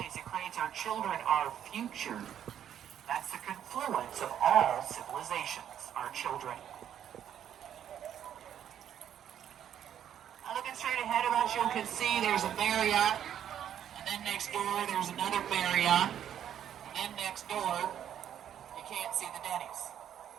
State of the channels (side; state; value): left; quieter; 9.9 dB